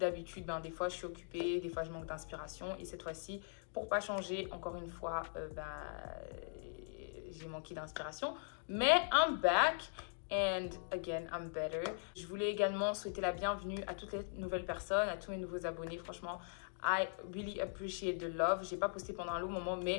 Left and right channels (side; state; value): right; silent; digital silence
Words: des fois je suis occupée, des fois je manque d'inspiration et cette fois-ci, pour pas changer, encore une fois, j'ai manqué d'inspiration. Mais I'm back and again I'm better. Je voulais également souhaiter la bienvenue à toutes les nouvelles personnes, à tous mes nouveaux abonnés. Franchement, I really appreciate the love. J'ai pas posté pendant un long moment,